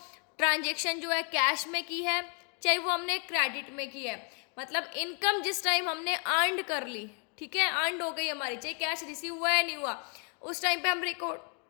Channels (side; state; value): right; quieter; 37.4 dB